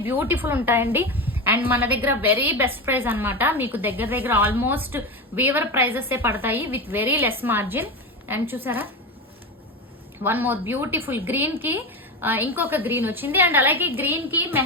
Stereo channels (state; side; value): normal; both; correlation 0.19